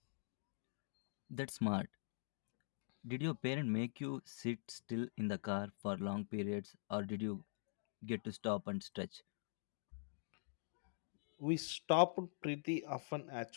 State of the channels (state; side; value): silent; right; digital silence